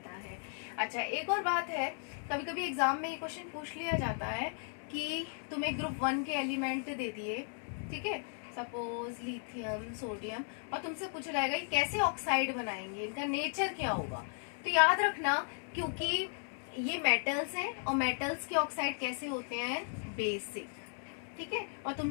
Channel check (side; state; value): right; silent; 54 dB below the other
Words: है। अच्छा एक और बात है, कभी कभी एग्जाम में ये क्वेश्चन पूछ लिया जाता है कि तुम्हें ग्रुप 1 के एलिमेंट दे दिए, ठीक है, सपोज लिथियम, सोडियम, और तुमसे पूछा जाएगा कि कैसे ऑक्साइड बनाएंगे, इनका नेचर क्या होगा। तो याद रखना, क्योंकि ये मेटल्स हैं और मेटल्स के ऑक्साइड कैसे होते हैं, बेसिक। ठीक है, और